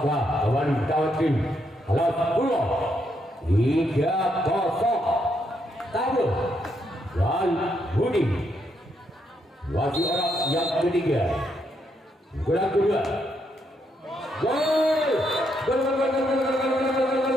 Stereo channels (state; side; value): normal; both; correlation 0.77